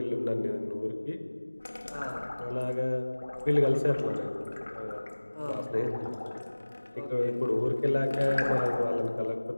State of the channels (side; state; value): both; inverted; correlation -1.00